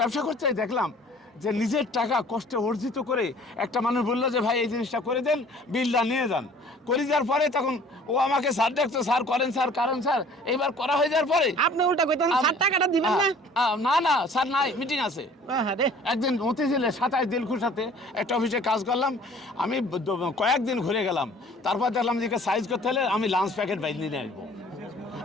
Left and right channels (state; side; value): normal; both; correlation 0.51